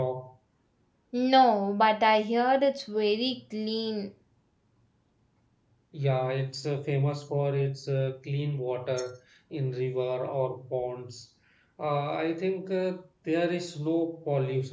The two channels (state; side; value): identical; both; correlation 1.00